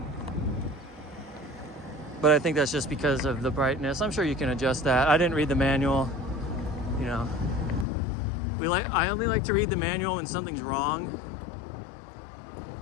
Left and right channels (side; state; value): right; drops out; at 7.9 s